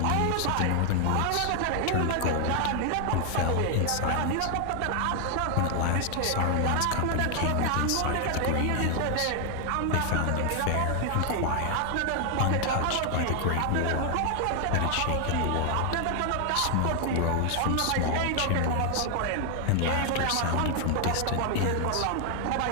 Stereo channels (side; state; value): both; different; correlation 0.00